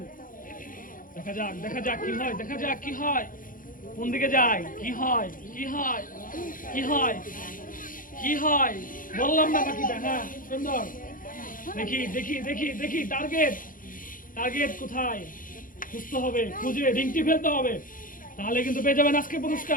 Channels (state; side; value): late; right; 0.40 ms